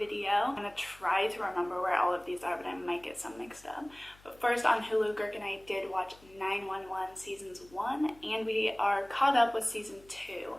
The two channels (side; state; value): left; noise; hum, 25 dB below the sound